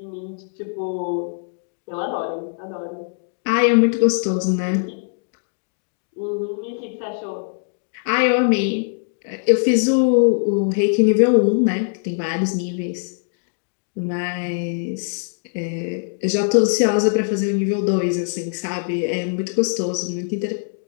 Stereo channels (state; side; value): silent; right; digital silence